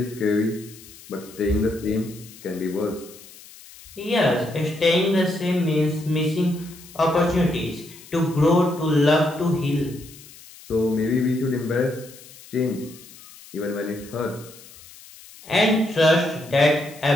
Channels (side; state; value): left; noise; hiss, 20 dB below the sound